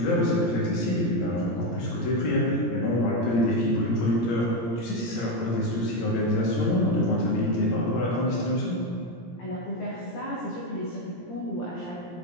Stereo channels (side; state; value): right; late; 17 ms